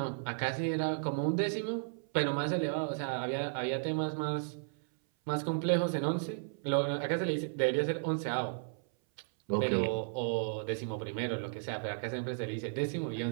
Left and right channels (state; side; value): silent; left; 55 dB below the other